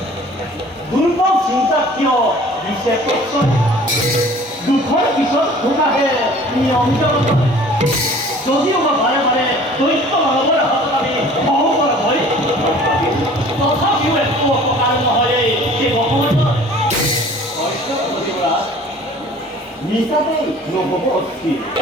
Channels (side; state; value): both; normal; correlation 0.48